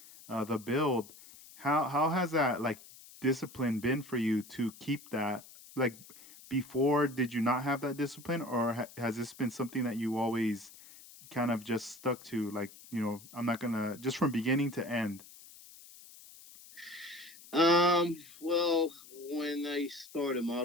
the build. How has that like discipline been for you to keep that? Like before, did you not have that discipline, or has this been something that you always kind of just stuck to? Like, I'm not gonna just from beginning to end. Well, when I start a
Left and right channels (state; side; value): noise; left; hiss, 20 dB below the sound